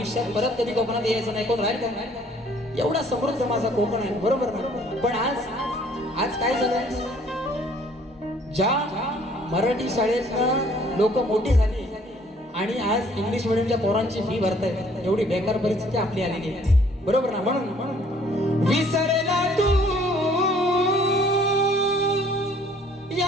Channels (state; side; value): normal; both; correlation 0.59